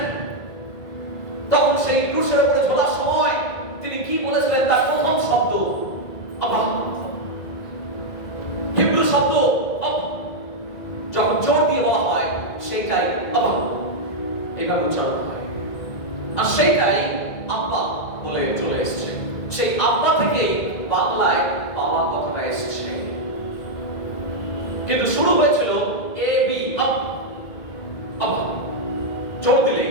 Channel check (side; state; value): right; late; 1.9 ms